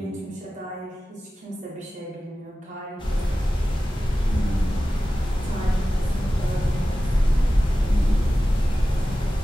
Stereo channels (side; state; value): both; normal; correlation 0.95